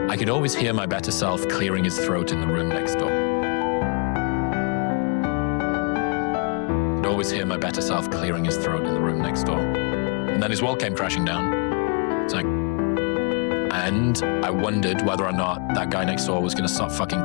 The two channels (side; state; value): right; quieter; 36.4 dB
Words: I could always hear my better self clearing his throat in the room next door. I could always hear my better self clearing his throat in the room next door. And then his world came crashing down. It's like, and I wondered whether or not that guy next door was going to stop fucking